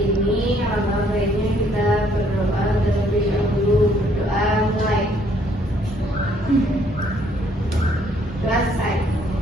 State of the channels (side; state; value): both; normal; correlation 0.65